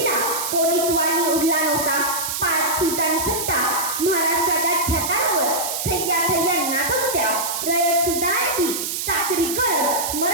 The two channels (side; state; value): right; noise; hiss, 3 dB below the sound